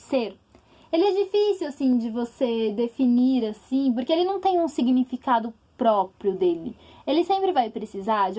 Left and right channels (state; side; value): identical; both; correlation 1.00